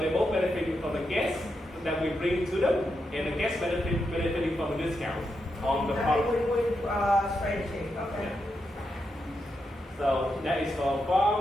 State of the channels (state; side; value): normal; both; correlation 0.85